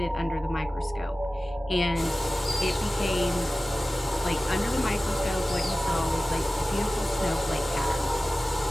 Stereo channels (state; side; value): normal; both; correlation 0.96